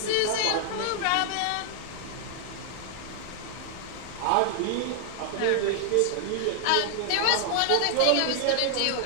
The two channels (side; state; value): both; different; correlation 0.00